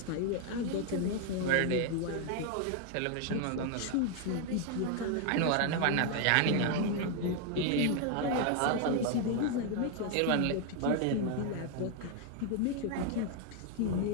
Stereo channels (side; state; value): both; different; correlation 0.00